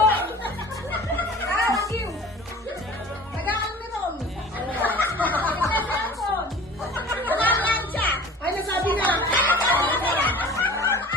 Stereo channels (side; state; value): both; normal; correlation 0.43